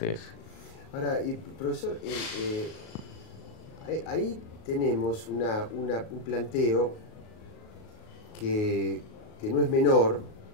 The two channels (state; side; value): late; right; 38 ms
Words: Ahora, profesor, ahí tenemos un planteo que no es menor,